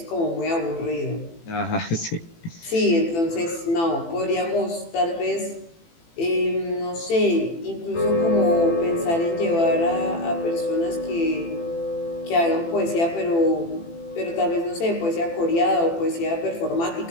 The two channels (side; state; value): right; late; 18 ms